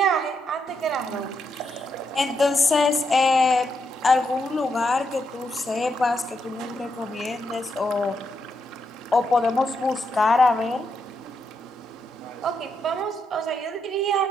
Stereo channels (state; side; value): normal; both; correlation 0.81